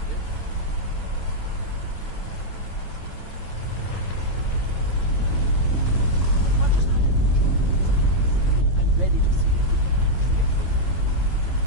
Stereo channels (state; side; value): late; right; 9.0 ms